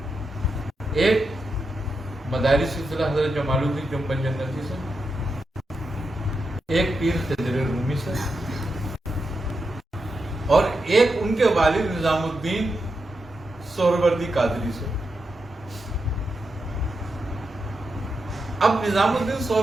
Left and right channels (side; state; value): both; normal; correlation 0.86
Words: ایک مداری سلسلہ حضرت جمال الدین جنبن جنتی سے، ایک پیر خضر رومی سے، اور ایک ان کے والد نظام الدین سہروردی قادری سے۔ اب نظام الدین